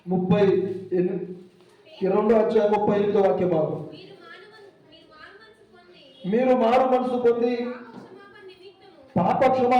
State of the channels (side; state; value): both; identical; correlation 1.00